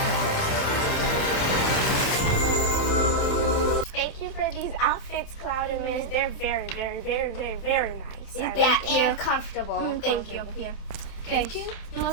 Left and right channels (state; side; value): late; right; 28 ms